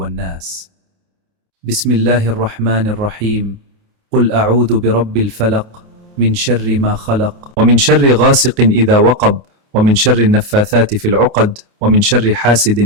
بسم الله الرحمن الرحيم. قل أعوذ برب الفلق من شر ما خلق ومن شر غاسق إذا وقب ومن شر النفاثات في العقد ومن شر حاسد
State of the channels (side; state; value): left; late; 28 ms